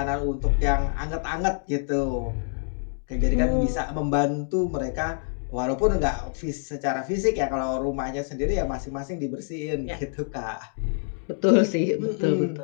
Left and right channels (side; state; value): right; silent; digital silence